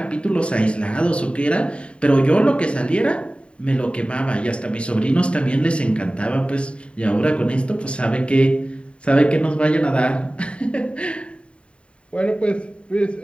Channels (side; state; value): right; late; 0.058 ms